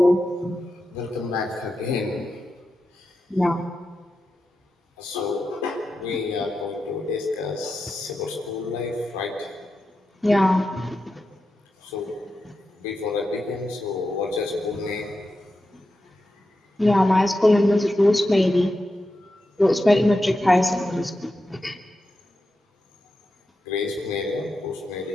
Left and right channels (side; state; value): both; normal; correlation 0.89